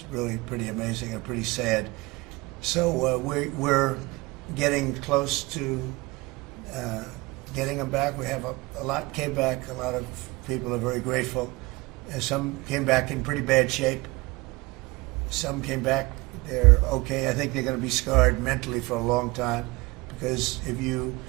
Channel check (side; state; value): left; quieter; 23.5 dB